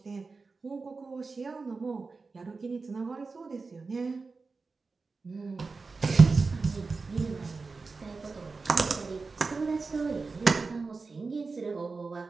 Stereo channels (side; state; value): left; quieter; 4.2 dB